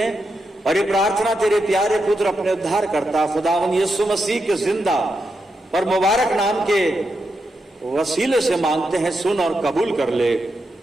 और ये प्रार्थना तेरे प्यारे पुत्र अपने उद्धार करता खुदावंद यीशु मसीह के जिंदा और मुबारक नाम के वसीले से मांगते हैं। सुन और कबूल कर ले,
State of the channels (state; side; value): normal; both; correlation 0.85